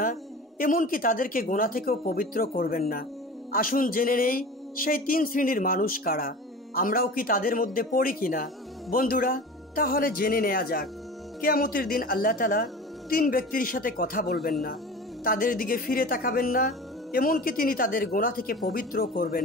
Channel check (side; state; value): both; normal; correlation 0.36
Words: এমনকি তাদেরকে গোনা থেকেও পবিত্র করবেন না। আসুন জেনে নেই সেই তিন শ্রেণীর মানুষ কারা। আমরাও কি তাদের মধ্যে পড়ি কিনা? বন্ধুরা, তাহলে জেনে নেওয়া যাক। কিয়ামতের দিন আল্লাহ তাআলা তিন ব্যক্তির সাথে কথা বলবেন না, তাদের দিকে ফিরে তাকাবেন না, এমনকি তিনি তাদের গোনা থেকে পবিত্র